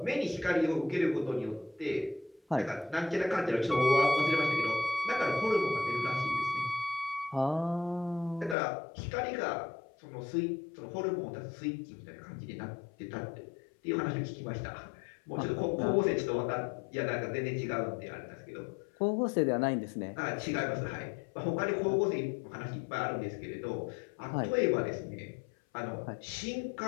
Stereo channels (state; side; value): drops out; right; at 8.6 s